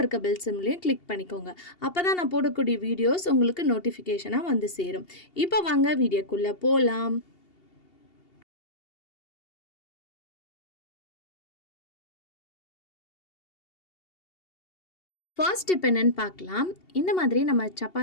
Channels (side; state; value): right; late; 2.8 ms